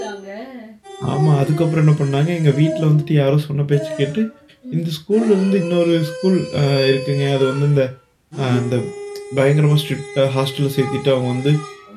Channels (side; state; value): both; identical; correlation 1.00